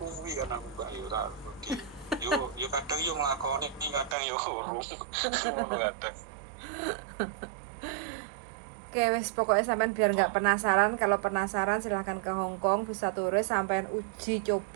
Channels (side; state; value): left; drops out; at 4.2 s